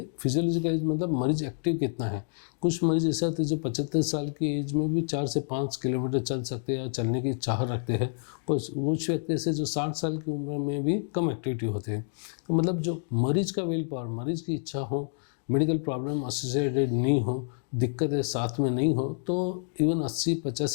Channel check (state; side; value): silent; right; digital silence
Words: फिजियोलॉजिकल एज मतलब मरीज एक्टिव कितना है। कुछ मरीज ऐसे होते हैं जो 75 साल की एज में भी 4 से 5 किलोमीटर चल सकते हैं या चलने की चाह रखते हैं। कुछ व्यक्ति ऐसे जो 60 साल की उम्र में भी कम एक्टिविटी होते हैं। तो मतलब जो मरीज का विल पावर, मरीज की इच्छा हो, मेडिकल प्रॉब्लम एसोसिएटेड नहीं हो, दिक्कतें साथ में नहीं हो, तो इवन